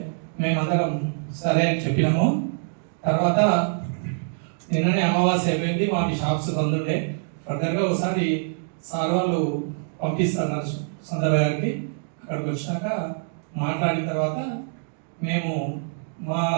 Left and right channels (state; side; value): silent; left; digital silence